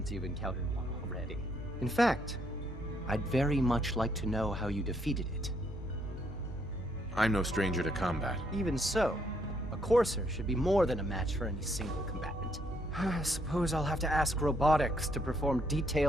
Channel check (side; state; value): both; normal; correlation 0.72